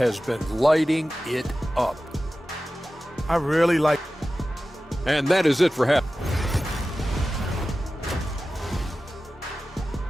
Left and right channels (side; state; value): both; normal; correlation 0.95